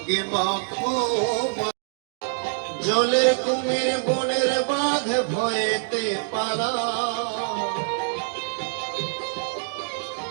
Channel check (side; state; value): left; silent; digital silence